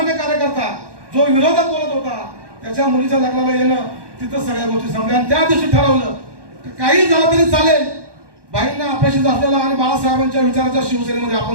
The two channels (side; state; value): left; late; 1.2 ms